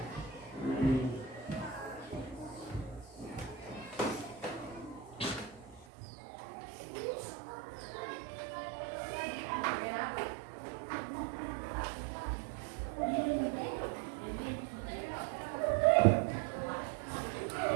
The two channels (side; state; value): left; drops out; at 5.9 s